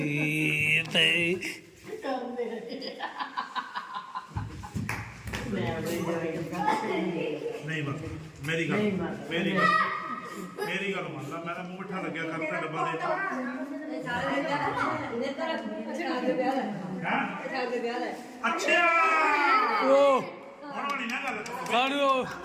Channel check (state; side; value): identical; both; correlation 1.00